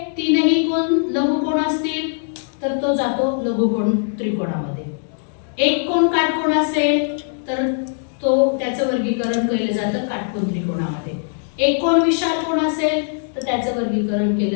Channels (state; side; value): silent; right; digital silence